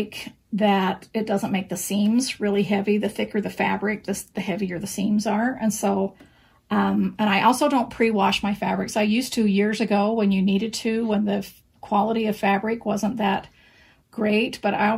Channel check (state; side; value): identical; both; correlation 1.00